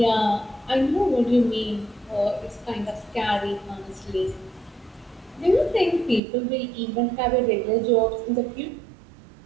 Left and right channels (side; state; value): left; drops out; at 6.2 s